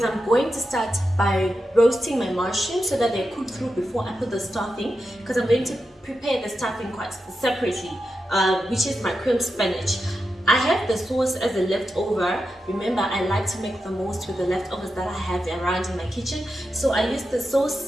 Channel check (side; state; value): both; normal; correlation 0.89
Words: I'm going to start by roasting my mushrooms so that they cook through before I put the stuffing, because I'm going to prepare the stuffing quite separately, which is my cream spinach. I have the sauce as a leftover. Remember, I like to make the most with the leftovers that I have around in my kitchen. So I used the